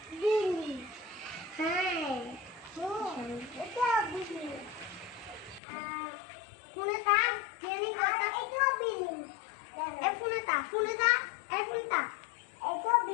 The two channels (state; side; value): drops out; right; at 5.6 s